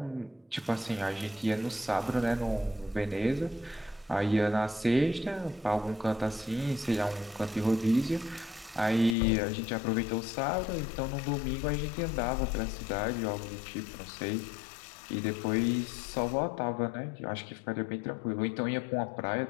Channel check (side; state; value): right; drops out; at 9.2 s